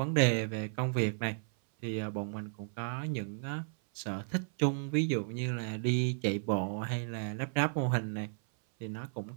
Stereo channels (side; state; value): left; silent; 55 dB below the other